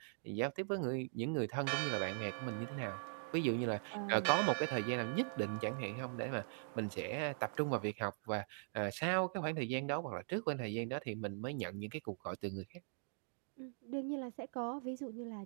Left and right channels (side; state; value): left; silent; digital silence